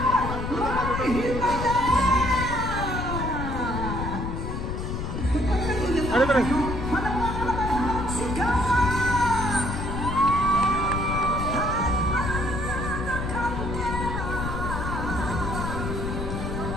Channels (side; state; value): left; noise; rumble, 4 dB below the sound